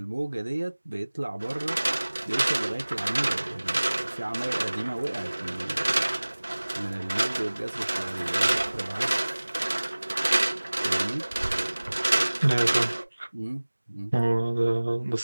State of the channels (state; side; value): inverted; both; correlation -1.00